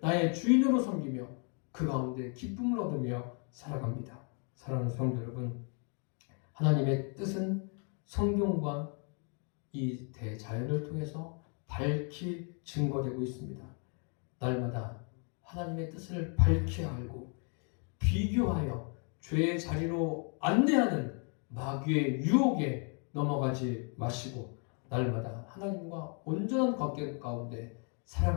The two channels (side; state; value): right; quieter; 39.2 dB